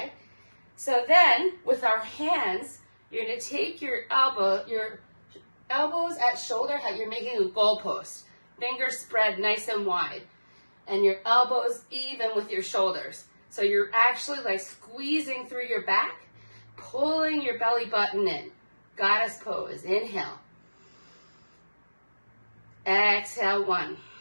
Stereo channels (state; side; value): inverted; both; correlation -1.00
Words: So then, with our hands, you're going to take your elbows at shoulder height. You're making a goalpost. Fingers spread nice and wide. And your elbows even with your shoulders. So you're actually like squeezing through your back, pulling your belly button in. Goddess pose. Inhale. Exhale, 1.